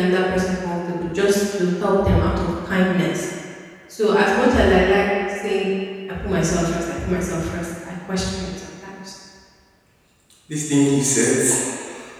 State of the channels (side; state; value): both; identical; correlation 1.00